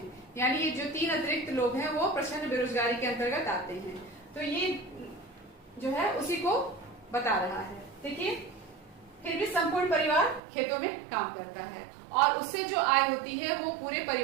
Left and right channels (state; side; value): drops out; left; at 10.4 s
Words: यानी ये जो 3 अतिरिक्त लोग हैं वो प्रच्छन्न बेरोजगारी के अंतर्गत आते हैं। तो ये जो है उसी को बता रहा है। देखिए, फिर भी संपूर्ण परिवार खेतों में काम करता है और उससे जो आय होती है वो पूरे